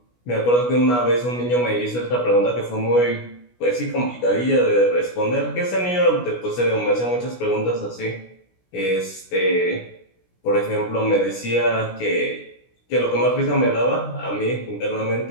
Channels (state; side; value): late; right; 16 ms